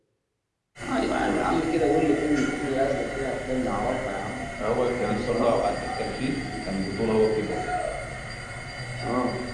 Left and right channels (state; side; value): identical; both; correlation 1.00